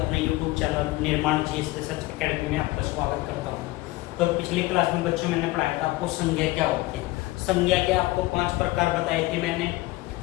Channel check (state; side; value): quieter; right; 19.5 dB